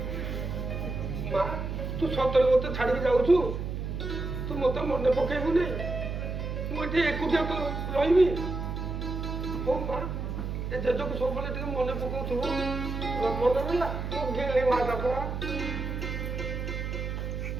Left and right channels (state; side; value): noise; right; hum, 4 dB below the sound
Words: ମା ତୁ ସତରେ ମତେ ଛାଡ଼ିକି ଯାଉଛୁ? ତୁ ମତେ ମନେ ପକେଇବୁ ନାଇଁ? ମୁଁ ଏଠି ଏକୁଟିଆ ତ ରହିବି। ହଉ ମା ଏ ଜେଜକୁ ସବୁବେଳେ ଟିକେ ମନେ ପକାଉଥିବୁ। ମନେ ରହିଲା ମୁଁ ଗେଲି ମାଟା ପରା।